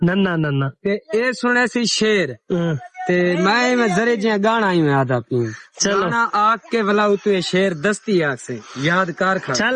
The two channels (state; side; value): identical; both; correlation 1.00